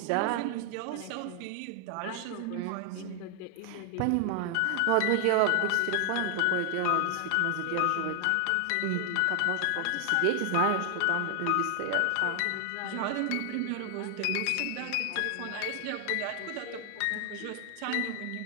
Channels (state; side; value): different; both; correlation 0.00